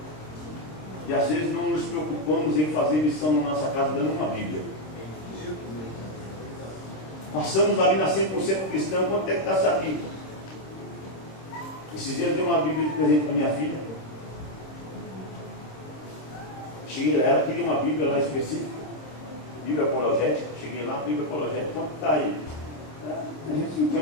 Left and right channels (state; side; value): late; right; 26 ms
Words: E às vezes não nos preocupamos em fazer lição na nossa casa dando uma Bíblia. Passamos ali na 100% cristã, quanto é que está essa Bíblia? Esses dias eu dei uma Bíblia de presente para minha filha. Cheguei, ela queria uma Bíblia lá específica, Bíblia apologética. Cheguei lá, Bíblia apologética, quanto está aí?